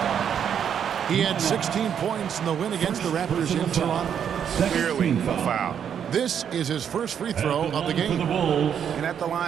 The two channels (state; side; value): quieter; left; 8.4 dB